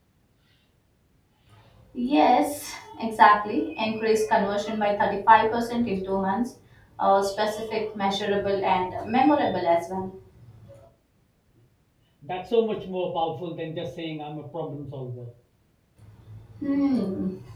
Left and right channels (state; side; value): identical; both; correlation 1.00